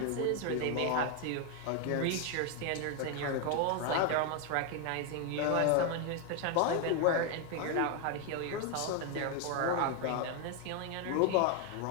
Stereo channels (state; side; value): different; both; correlation 0.01